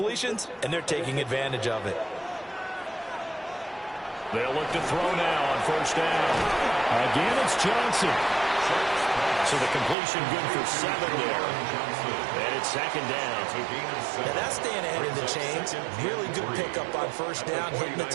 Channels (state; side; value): drops out; left; at 10.0 s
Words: and they're taking advantage of it. They'll look to throw now on first down. Again, it's Johnson. So the completion good for 7 there. And it's 2nd down. Now that's staying ahead of the chains. Really good pickup on first down, hitting the